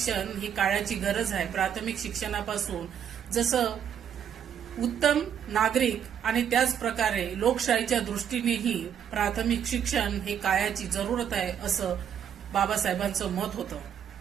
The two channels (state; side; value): quieter; left; 8.8 dB